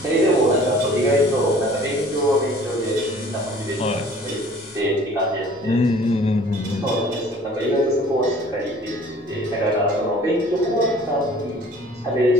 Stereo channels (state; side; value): normal; both; correlation 0.50